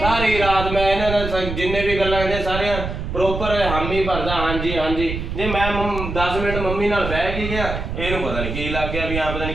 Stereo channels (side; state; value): right; noise; rumble, 5 dB below the sound